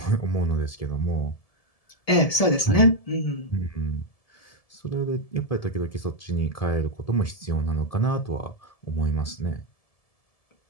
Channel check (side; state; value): right; late; 1.7 ms